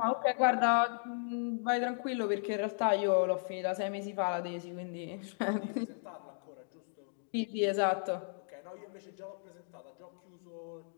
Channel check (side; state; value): right; silent; digital silence